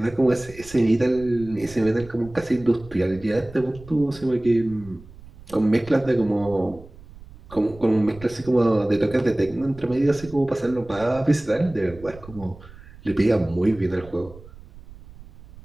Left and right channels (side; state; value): right; noise; rumble, 19 dB below the sound